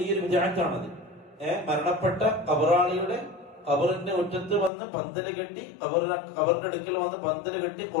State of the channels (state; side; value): drops out; right; at 4.7 s